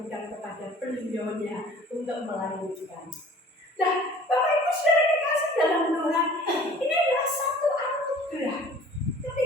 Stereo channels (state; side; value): normal; both; correlation 0.48